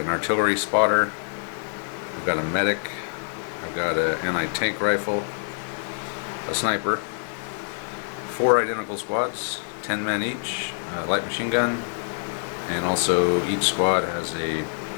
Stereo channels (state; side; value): silent; right; digital silence